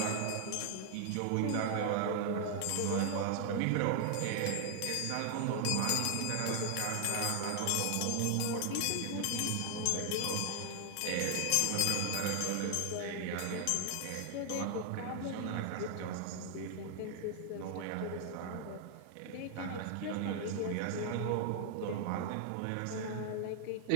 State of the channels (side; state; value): both; different; correlation 0.00